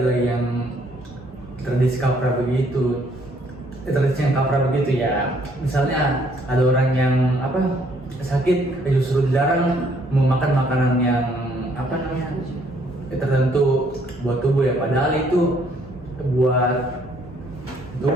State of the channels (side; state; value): both; normal; correlation 0.65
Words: yang tradisi kaprah begitu. Tradisi yang kaprah begitu ya. Misalnya ada orang yang sakit, justru dilarang memakan makanan yang tertentu buat tubuh ya, padahal itu buat